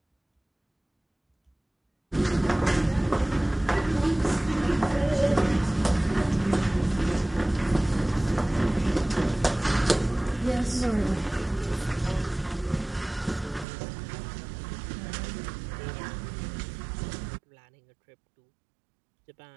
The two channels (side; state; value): left; drops out; at 13.7 s